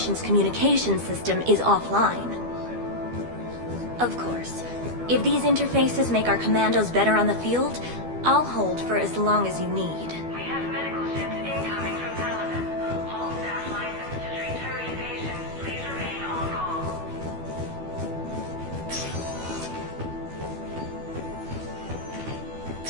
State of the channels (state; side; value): late; left; 12 ms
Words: communication system is offline. Of course, if these interfaces make our commandos better on the field, I'll hold for as long as you need. We have medical ships incoming from Paladin. All staff licensed to treat Turian patients, please remain on call.